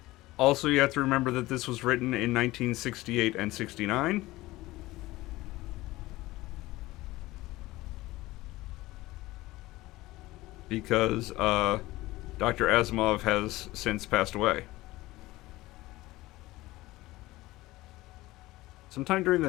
Also, you have to remember that this was written in 1968 and 69. Because Dr. Asimov has since passed away. Sometime during the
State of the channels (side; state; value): right; quieter; 18.6 dB